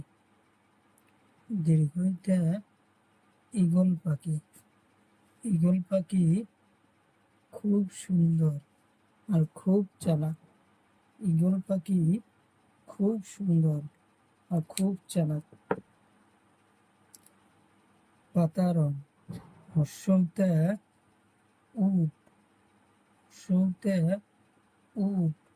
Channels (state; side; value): identical; both; correlation 1.00